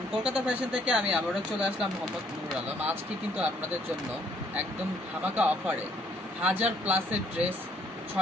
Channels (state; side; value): normal; both; correlation 0.65